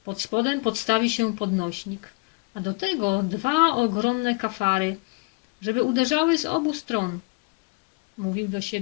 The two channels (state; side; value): quieter; right; 28.8 dB